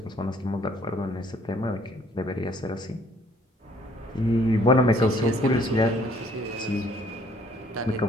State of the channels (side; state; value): both; normal; correlation 0.61